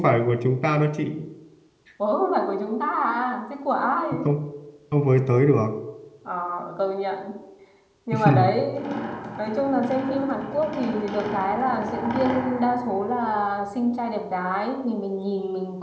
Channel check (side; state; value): both; identical; correlation 1.00